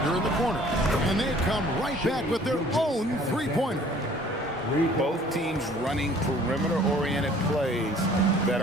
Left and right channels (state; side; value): normal; both; correlation 0.54